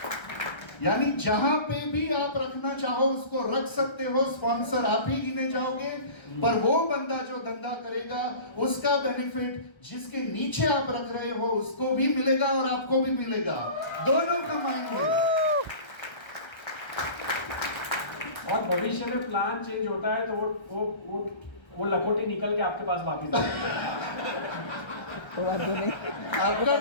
यानी जहां पे भी आप रखना चाहो उसको रख सकते हो। स्पॉन्सर आप ही गिने जाओगे, पर वो बंदा जो धंधा करेगा उसका बेनिफिट जिसके नीचे आप रख रहे हो उसको भी मिलेगा और आपको भी मिलेगा, दोनों कमाएंगे। और भविष्य में प्लान चेंज होता है तो वो लखोटी निकल के आपके पास वापस आपका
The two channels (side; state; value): right; late; 1.3 ms